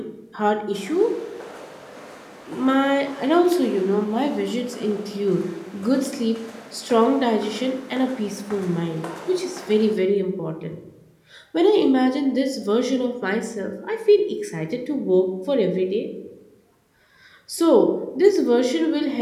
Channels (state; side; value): identical; both; correlation 1.00